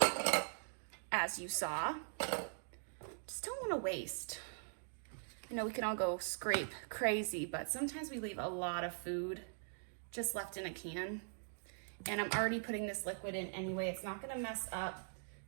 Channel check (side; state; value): left; silent; digital silence